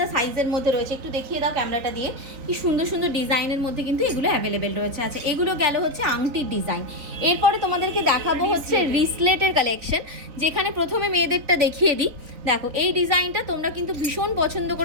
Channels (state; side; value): late; left; 3.9 ms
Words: সাইজের মধ্যে রয়েছে। একটু দেখিয়ে দাও ক্যামেরাটা দিয়ে, কি সুন্দর সুন্দর ডিজাইনের মধ্যে কিন্তু এগুলো অ্যাভেলেবেল রয়েছে। আচ্ছা, এগুলো গেল হচ্ছে আংটির ডিজাইন। এরপরে তোমাদেরকে দেখাবো হচ্ছে রিসলেটের কালেকশন, যেখানে প্রথমে মেয়েদেরটা দেখিয়ে দিই। দেখো এই ডিজাইনটা তোমরা কিন্তু ভীষণ পছন্দ